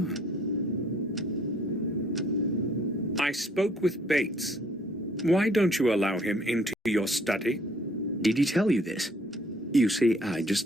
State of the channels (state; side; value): normal; both; correlation 0.61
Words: I spoke with Bates. Why don't you allow him into your study? Did he tell you this? You see, I